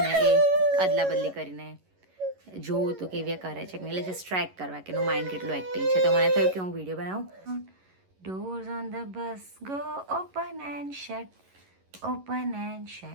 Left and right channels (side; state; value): left; late; 11 ms